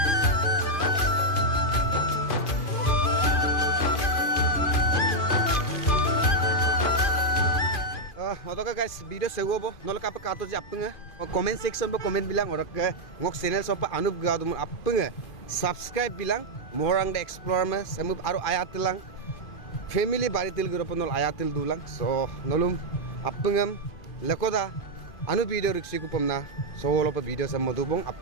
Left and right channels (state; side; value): late; right; 2.4 ms